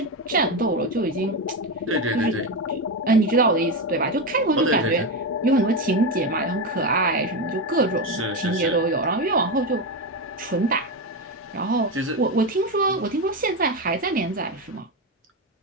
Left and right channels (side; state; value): both; normal; correlation 0.13